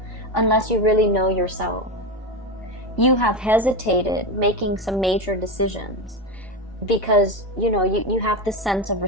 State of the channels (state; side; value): normal; both; correlation 0.16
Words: unless you really know yourself. You have hesitated making some major decisions because, you know, you have this sense of